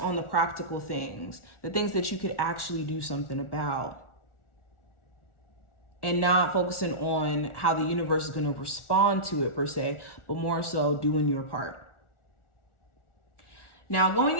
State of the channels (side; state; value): right; late; 1.4 ms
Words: the practical things, the things that you could actually do something about, and not focusing on how the universe is going to respond to it per se, but more so doing your part. Now, going